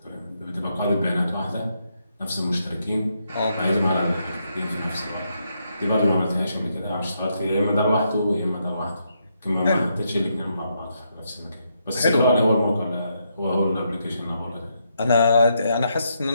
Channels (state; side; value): inverted; both; correlation -0.79